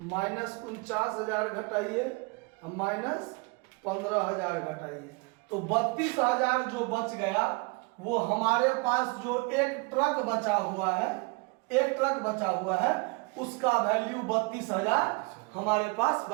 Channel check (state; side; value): quieter; left; 29.7 dB